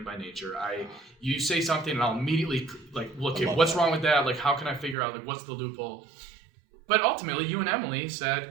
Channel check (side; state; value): left; drops out; at 5.0 s